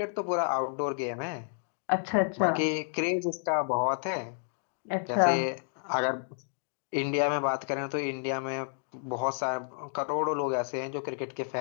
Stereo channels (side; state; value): right; silent; 57 dB below the other